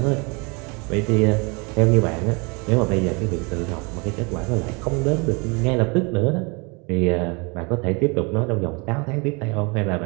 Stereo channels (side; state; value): left; quieter; 29.8 dB